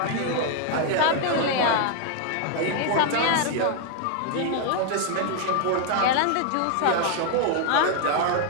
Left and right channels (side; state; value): both; different; correlation 0.00